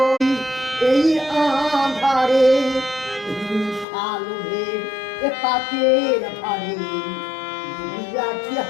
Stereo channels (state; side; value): drops out; right; at 3.9 s